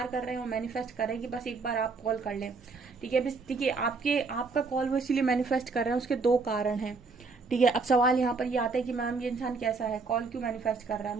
कर रहे हैं, वो मैनिफेस्ट कर रहे हैं कि बस एक बार आप कॉल कर लें, ठीक है। ठीक है, आपका कॉल वो इसीलिए मैनिफेस्ट कर रहे हैं, उसके दो कारण हैं। ठीक है, अब सवाल यहाँ पर ये आता है कि मैम ये इंसान कैसा है, कॉल क्यों मैनिफेस्ट कर रहा है,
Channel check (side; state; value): left; quieter; 4.3 dB